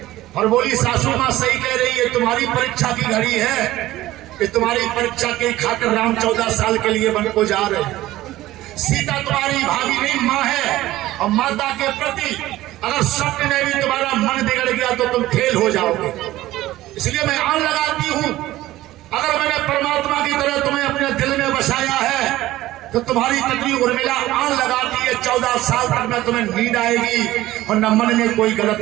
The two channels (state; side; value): quieter; left; 16.0 dB